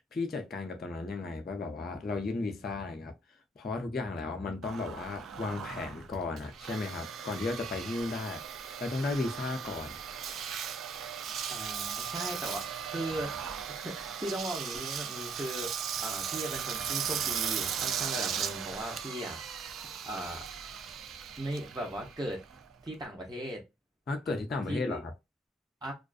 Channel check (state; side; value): normal; both; correlation 0.64